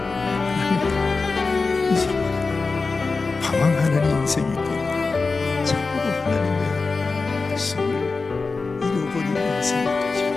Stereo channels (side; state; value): right; quieter; 4.1 dB